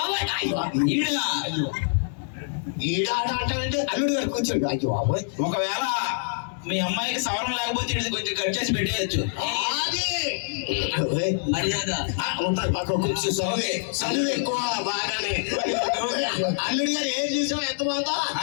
ఈడాట అంటే అల్లుడు గారు కూర్చోండి. అయ్యో బాబోయ్. ఒకవేళ మీ అమ్మాయికి సవరం లేకపోతే ఇది కొంచెం కట్ చేసి పెట్టేయచ్చు. ఉంటుంది పక్క కూర్చో. చదువు ఎక్కువ బాగానే. అల్లుడు గారు ఏం చూసావు ఎంత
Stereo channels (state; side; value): silent; right; 61 dB below the other